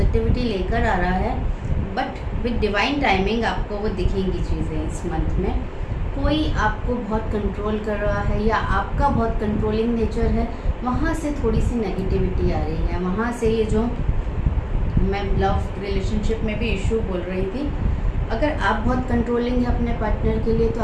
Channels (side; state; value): both; identical; correlation 1.00